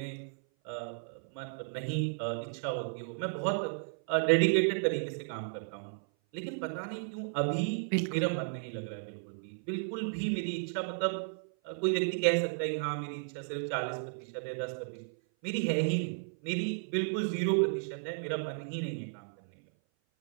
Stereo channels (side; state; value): left; silent; 55 dB below the other